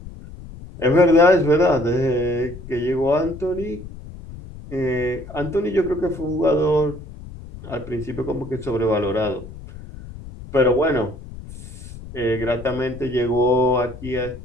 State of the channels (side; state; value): left; noise; rumble, 14 dB below the sound